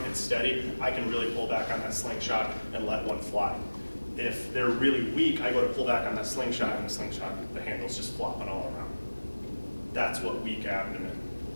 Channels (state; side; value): inverted; both; correlation -1.00